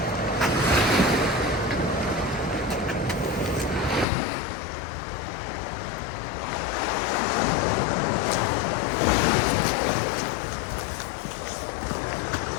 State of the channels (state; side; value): drops out; right; at 4.0 s